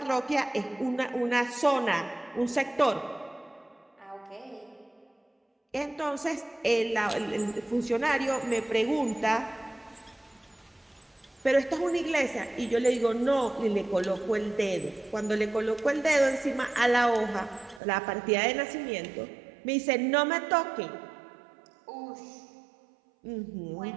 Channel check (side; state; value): left; drops out; at 17.8 s